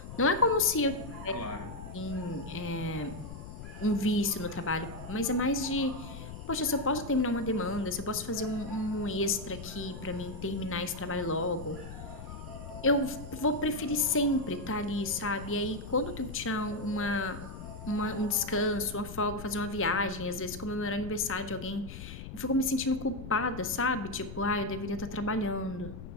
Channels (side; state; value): left; noise; rumble, 11 dB below the sound